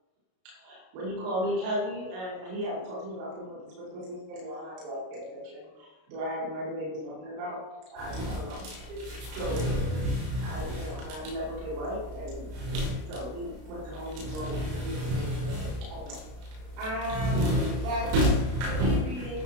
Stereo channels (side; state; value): left; late; 32 ms